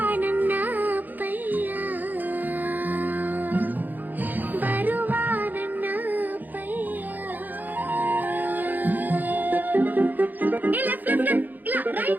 ನನ್ನ ಅಪ್ಪಯ್ಯ, ಬರುವ ನನ್ನ ಅಪ್ಪಯ್ಯ.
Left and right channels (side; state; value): left; late; 0.085 ms